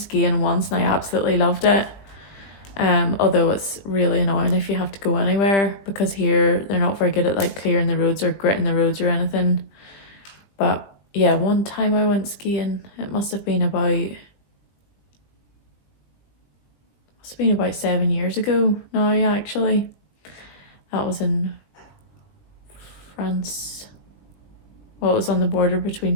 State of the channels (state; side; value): late; right; 20 ms